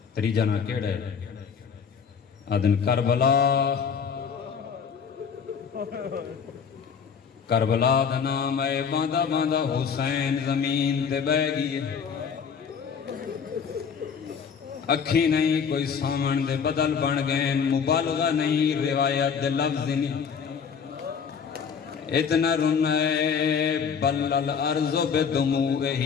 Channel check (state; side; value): quieter; right; 6.7 dB